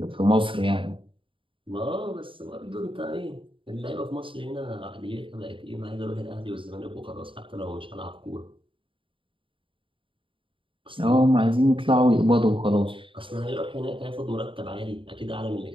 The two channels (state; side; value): late; left; 0.25 ms